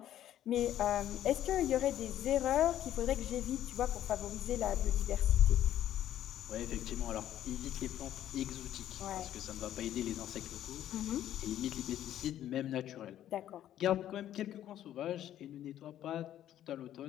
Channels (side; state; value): right; quieter; 11.8 dB